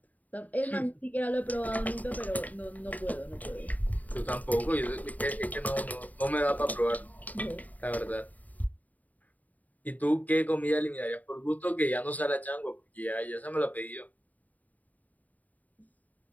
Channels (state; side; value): late; right; 0.076 ms